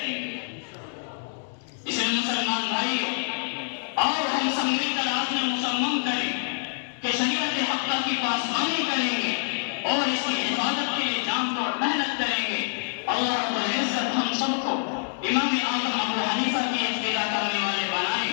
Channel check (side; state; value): right; silent; digital silence